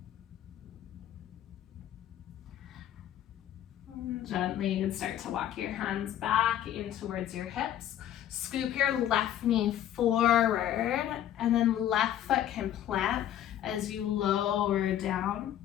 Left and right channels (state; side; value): quieter; right; 11.4 dB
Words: Gently, you can start to walk your hands back in towards your hips. Scoop your left knee forward, and then left foot can plant as you lower down,